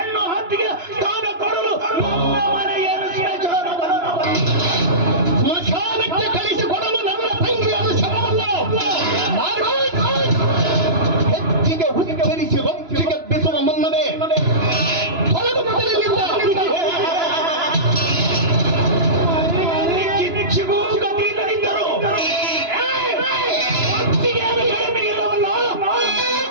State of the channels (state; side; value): late; left; 2.9 ms